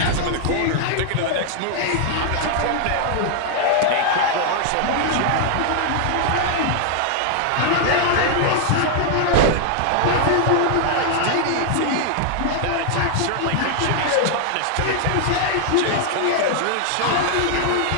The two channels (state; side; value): different; both; correlation 0.00